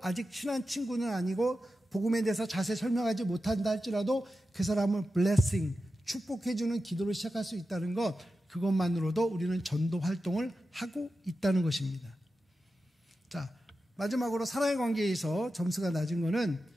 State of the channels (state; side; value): normal; both; correlation 0.92